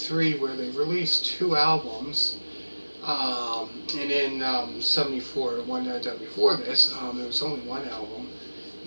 where they released two albums. And in 74, the one that done before this, there was only one album.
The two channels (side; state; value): both; inverted; correlation -1.00